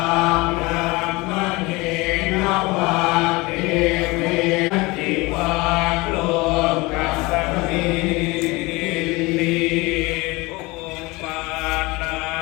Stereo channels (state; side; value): quieter; right; 23.4 dB